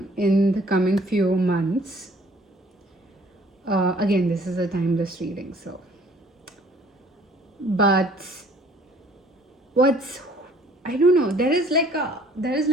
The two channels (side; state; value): both; normal; correlation 0.56